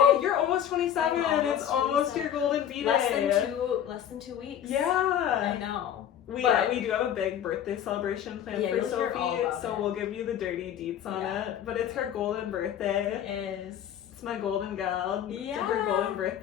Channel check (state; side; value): quieter; right; 9.9 dB